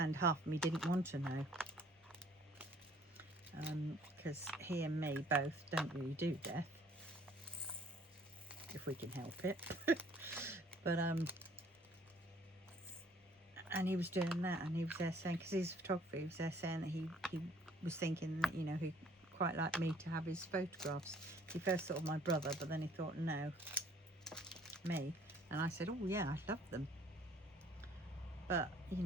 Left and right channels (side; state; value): both; normal; correlation 0.58